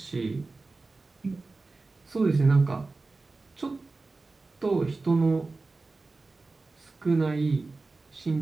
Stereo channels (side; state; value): left; quieter; 3.6 dB